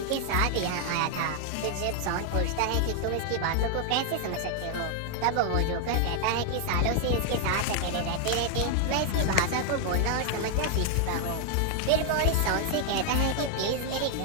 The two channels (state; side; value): different; both; correlation 0.00